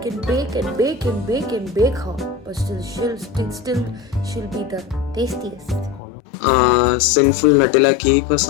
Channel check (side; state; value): right; drops out; at 6.0 s